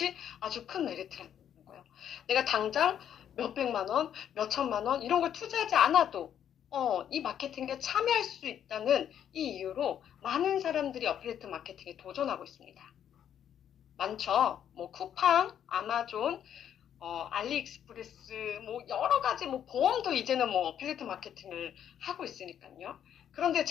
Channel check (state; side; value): quieter; right; 9.6 dB